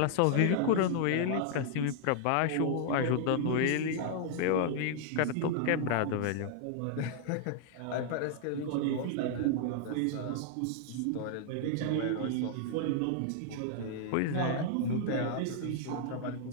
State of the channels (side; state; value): both; different; correlation -0.01